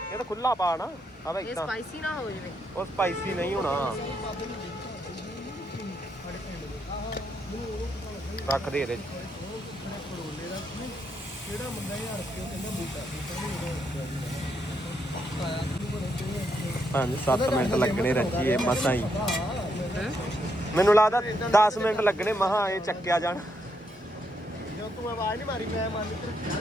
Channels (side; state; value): both; normal; correlation 0.78